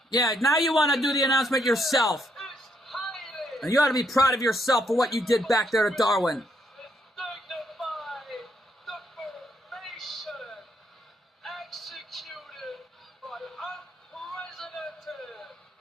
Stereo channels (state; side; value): normal; both; correlation 0.74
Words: Yeah, now you want to do the announcement yourself. It's Heidi. And you ought to be proud of yourself for what you did back there to Darwin. Dignified the formation executed by unprecedented